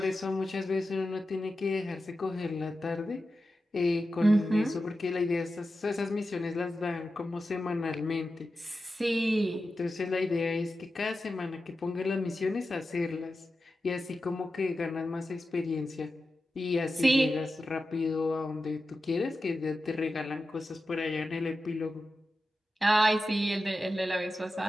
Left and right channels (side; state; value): both; normal; correlation 0.92